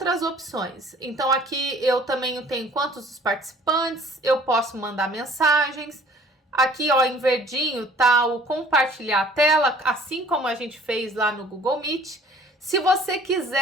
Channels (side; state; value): both; normal; correlation 0.52